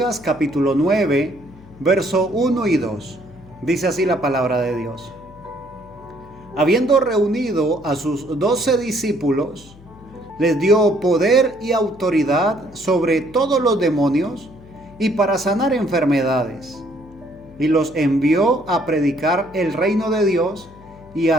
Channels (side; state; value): left; noise; hum, 22 dB below the sound